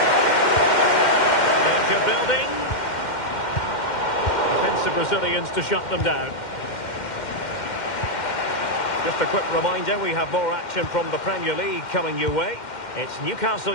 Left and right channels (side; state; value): right; late; 2.1 ms